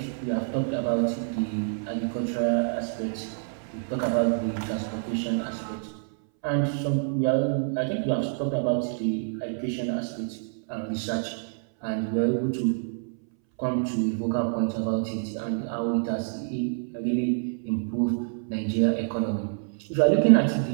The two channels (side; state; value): left; silent; 60 dB below the other